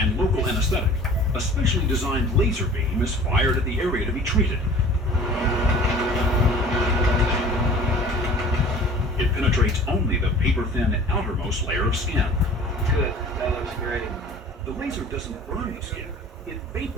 local anesthetic, a specially designed laser beam is fired at the area to be treated. It penetrates only the paper-thin outermost layer of skin. Good, that looks great. The laser doesn't burn the skin. It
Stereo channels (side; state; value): both; normal; correlation 0.45